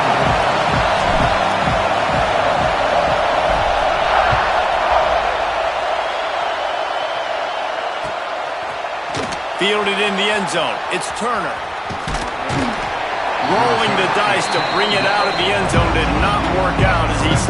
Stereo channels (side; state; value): both; identical; correlation 1.00